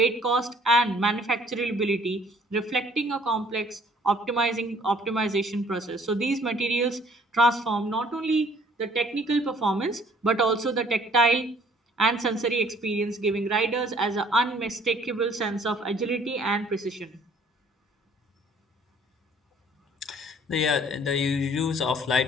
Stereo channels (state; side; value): normal; both; correlation 0.57